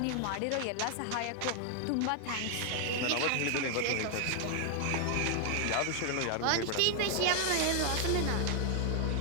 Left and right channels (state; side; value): different; both; correlation 0.00